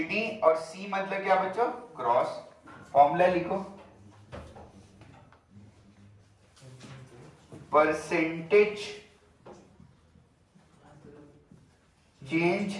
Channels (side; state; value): both; identical; correlation 1.00